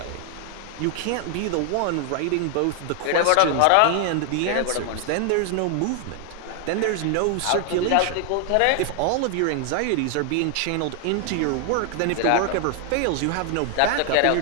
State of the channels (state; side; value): different; both; correlation 0.00